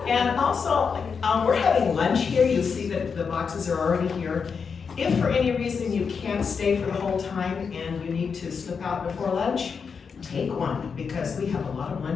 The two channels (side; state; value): right; quieter; 5.9 dB